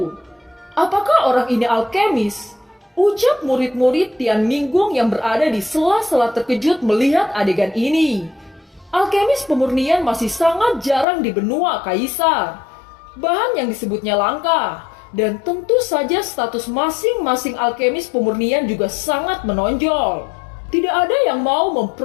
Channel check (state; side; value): drops out; right; at 11.1 s